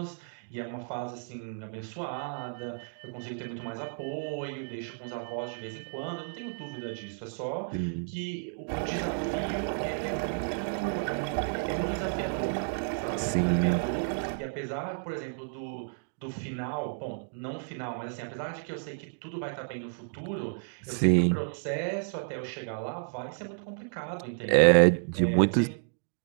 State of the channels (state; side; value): silent; left; digital silence